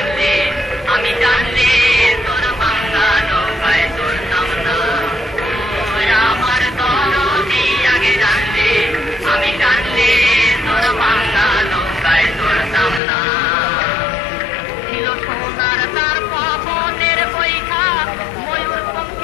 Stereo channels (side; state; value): right; drops out; at 13.0 s